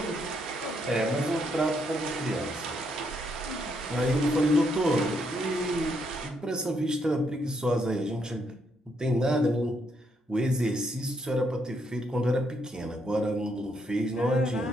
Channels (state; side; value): normal; both; correlation 0.75